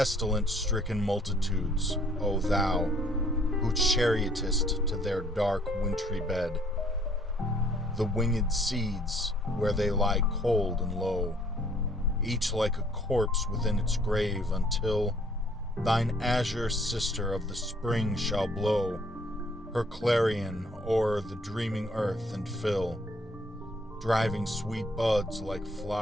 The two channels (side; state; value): both; normal; correlation 0.62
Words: multitudes, O thou, who chariotest to their dark wintry bed, the winged seeds where they lie cold and low, each like a corpse within its grave, until thine azure sister of the spring shall blow her clarion o'er the dreaming earth and fill, driving sweet buds like